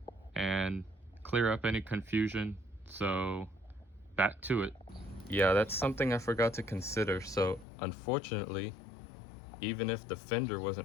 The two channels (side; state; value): right; drops out; at 7.7 s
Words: and clear up any confusion, so back to it. Yeah, that's something I forgot to consider. So unfortunately, even if the fender